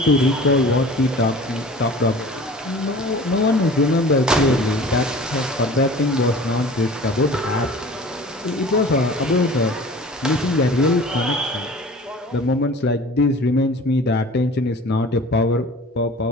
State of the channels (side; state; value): both; normal; correlation 0.42